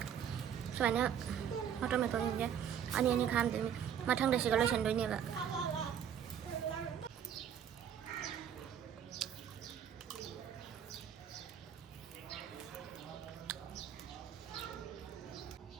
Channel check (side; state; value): left; quieter; 8.8 dB